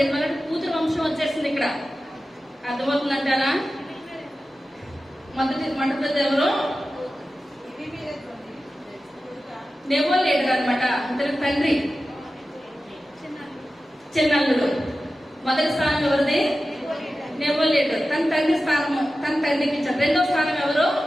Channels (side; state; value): both; normal; correlation 0.94